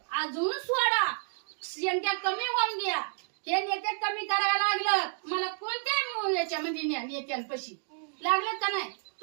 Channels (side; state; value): left; silent; digital silence